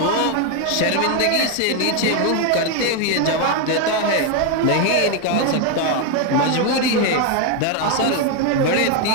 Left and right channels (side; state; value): both; different; correlation 0.01